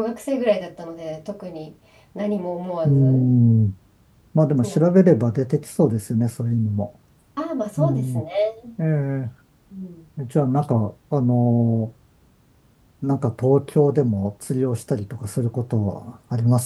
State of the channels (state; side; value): identical; both; correlation 1.00